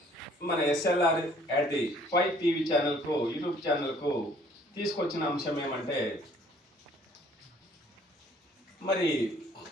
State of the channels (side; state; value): both; normal; correlation 0.59